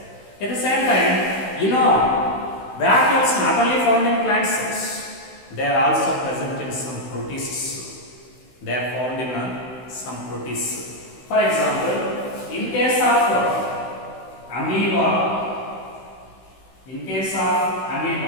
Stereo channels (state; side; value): late; right; 16 ms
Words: At the same time, vacuoles not only found in plant cells, they are also present in some protists. They are found in some protists. For example, in case of amoeba,